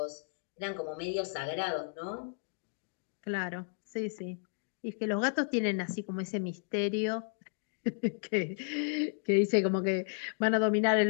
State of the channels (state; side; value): silent; right; digital silence